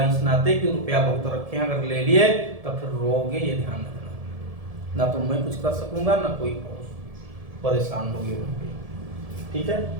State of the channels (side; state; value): left; late; 1.7 ms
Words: इस नाते कि रुपया बहुत रखे, अगर ले लिए तो फिर रोगे, ये ध्यान रखना। ना तो मैं कुछ कर सकूंगा ना कोई परेशान होगी। ठीक है,